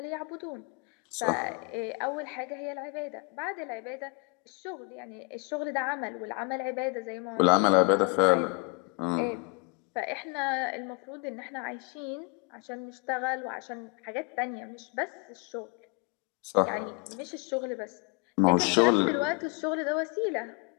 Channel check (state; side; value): quieter; right; 32.9 dB